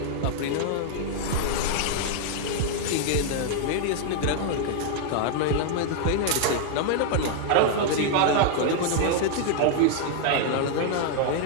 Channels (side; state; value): both; different; correlation 0.00